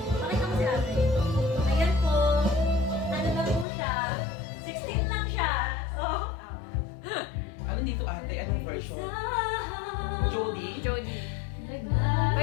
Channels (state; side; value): drops out; right; at 3.7 s